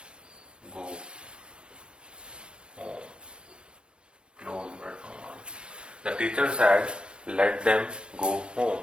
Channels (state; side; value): late; left; 0.053 ms